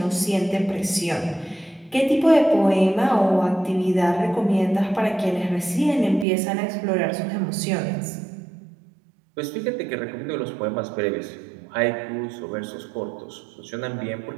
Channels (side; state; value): left; drops out; at 6.2 s